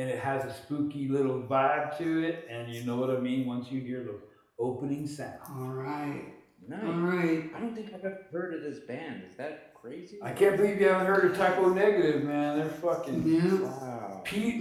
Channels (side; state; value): both; identical; correlation 1.00